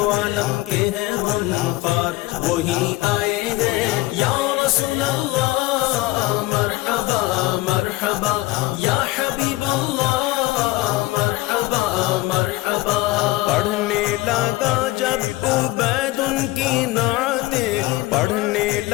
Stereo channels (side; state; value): right; quieter; 19.2 dB